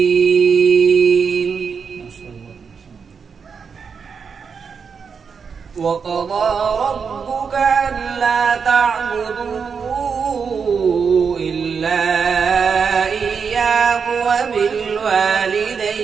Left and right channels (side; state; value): left; quieter; 6.0 dB